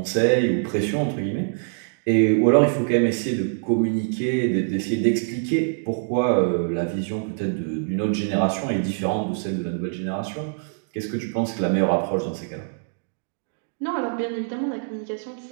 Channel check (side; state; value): left; silent; digital silence